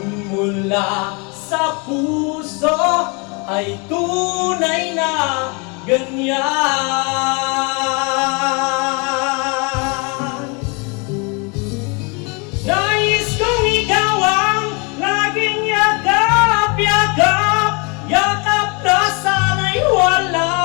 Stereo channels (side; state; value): right; quieter; 31.9 dB